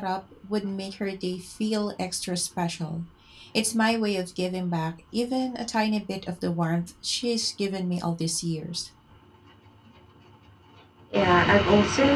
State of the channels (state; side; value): identical; both; correlation 1.00